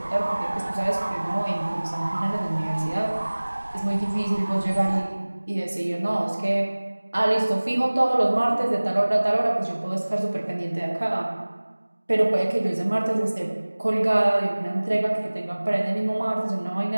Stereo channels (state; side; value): inverted; both; correlation -1.00